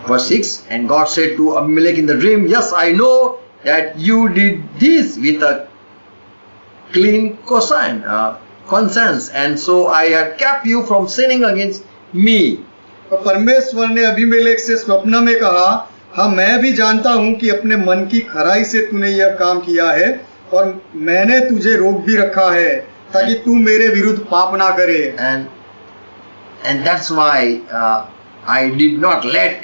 Verse 6, and God said to Abimelech in the dream, yes, I know that you did this with a clean conscience, and so I had kept you from sinning against me. और परमेश्वर ने अबीमेलेक से स्वप्न में कहा, हाँ मैं भी जानता हूँ कि अपने मन की खराई से तूने यह काम किया है और मैंने तुझे रोक भी रखा है ताकि तू मेरे विरुद्ध पाप ना करे। And that's why I did not let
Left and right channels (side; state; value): both; inverted; correlation -1.00